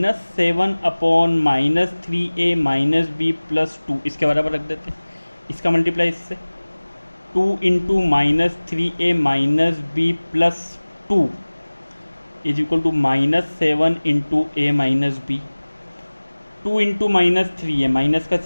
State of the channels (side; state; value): both; inverted; correlation -1.00